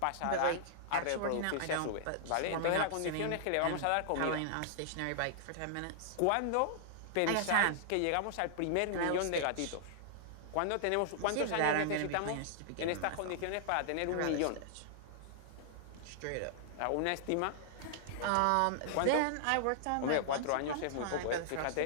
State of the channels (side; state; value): both; different; correlation -0.01